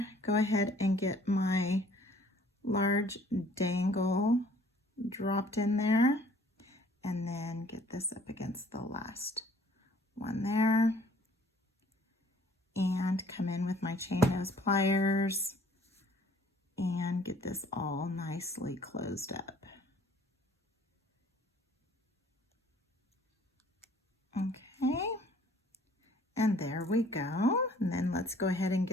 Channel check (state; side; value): normal; both; correlation 0.56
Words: Go ahead and get my large dangle dropped in there, and then get this up against the last one there. And come in with my chain nose pliers and get this all nicely closed up. Okay, and there we go. And then let's go ahead and